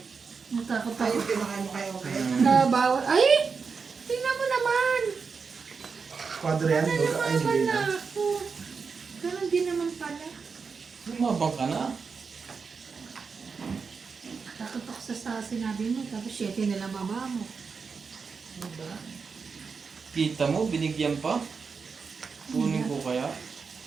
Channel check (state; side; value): quieter; left; 5.3 dB